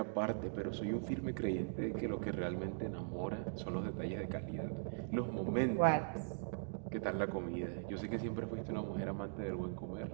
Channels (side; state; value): left; silent; digital silence